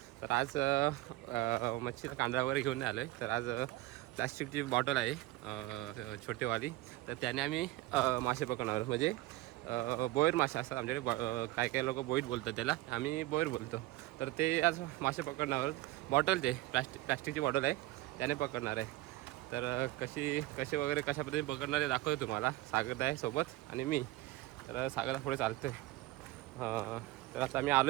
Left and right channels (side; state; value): left; quieter; 17.5 dB